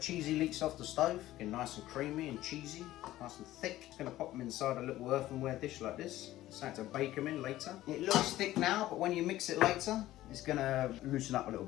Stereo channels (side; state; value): right; quieter; 15.1 dB